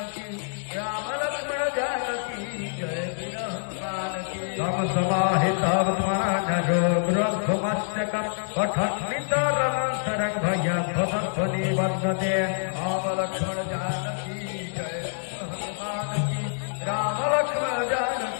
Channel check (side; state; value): right; silent; digital silence